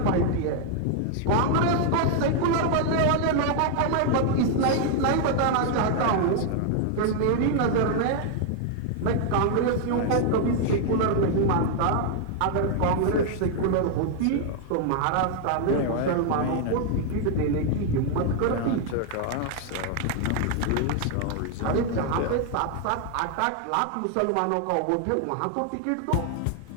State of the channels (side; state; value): both; different; correlation 0.00